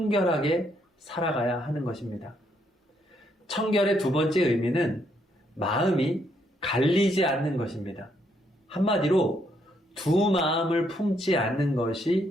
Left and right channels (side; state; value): both; normal; correlation 0.73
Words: 살아가야 하는 것입니다. 청결의 두 번째 의미는 마음이 갈리지 않는 것입니다. 한마디로 두 마음을 품지 않는